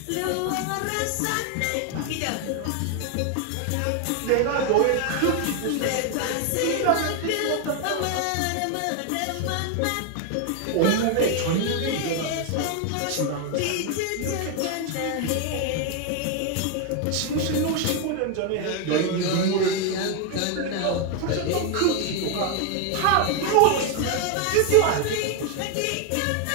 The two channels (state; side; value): different; both; correlation 0.01